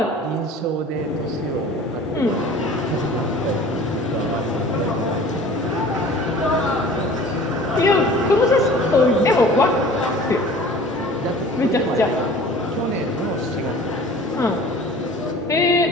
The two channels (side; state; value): both; normal; correlation 0.44